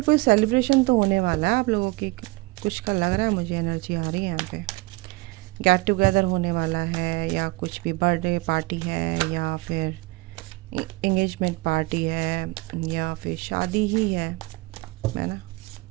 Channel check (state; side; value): quieter; left; 23.6 dB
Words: कोई सेलिब्रेशन तो होने वाला है आप लोगों की, कुछ का लग रहा है मुझे, एनर्जी आ रही है यहाँ पे। गेट टुगेदर होने वाला है, या कुछ भी बर्थडे पार्टी है, या फिर एंगेजमेंट पार्टी है, या फिर शादी ही है ना,